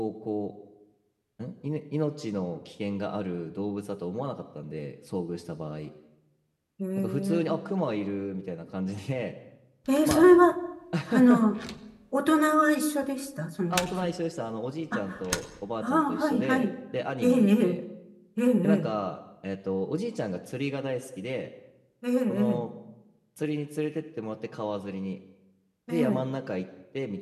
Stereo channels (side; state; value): both; identical; correlation 1.00